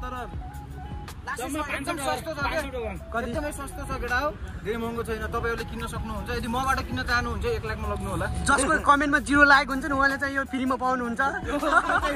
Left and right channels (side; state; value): both; identical; correlation 1.00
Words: तर एकदम सस्तो छ के एकदमै सस्तो छ केटा हो धेरै महँगो छैन तपाईहरुले किन्न सक्नुहुन्छ यदि मबाट किन्न चाहनुहुन्छ 1 लाखमा लग्नु होला जसको कमेन्टमा 0 लागेको हुन्छ नि उहाँले चाहिँ यो फ्रीमा पाउनुहुन्छ